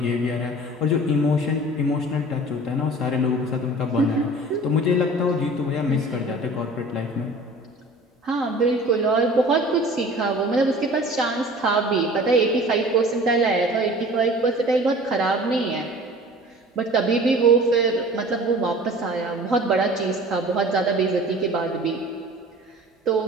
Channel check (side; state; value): both; normal; correlation 0.44